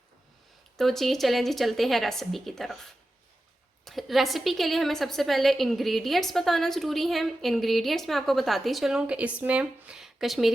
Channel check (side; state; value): both; normal; correlation 0.92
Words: तो जी चलें जी, चलते हैं रेसिपी की तरफ। रेसिपी के लिए हमें सबसे पहले इंग्रेडिएंट्स बताना ज़रूरी है। इंग्रेडिएंट्स मैं आपको बताती चलूँ कि इसमें